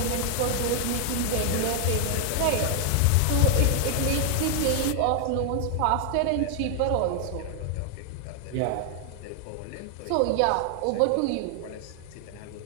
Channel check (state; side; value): different; both; correlation 0.00